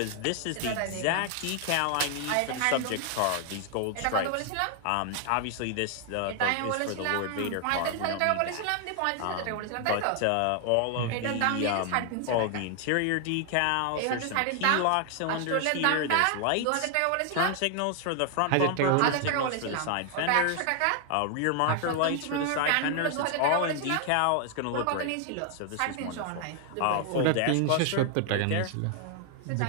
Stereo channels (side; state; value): both; different; correlation 0.00